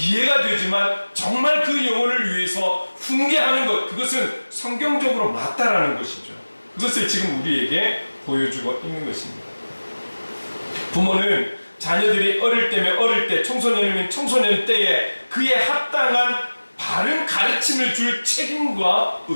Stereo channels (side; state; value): both; inverted; correlation -1.00